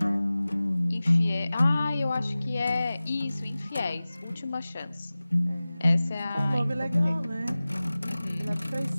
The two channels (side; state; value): both; inverted; correlation -0.98